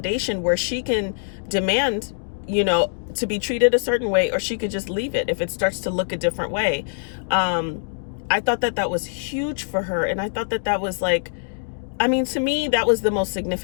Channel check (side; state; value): right; silent; digital silence